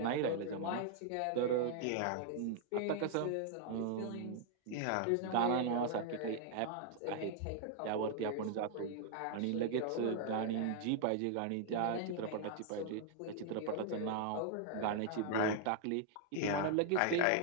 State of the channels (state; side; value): different; both; correlation 0.00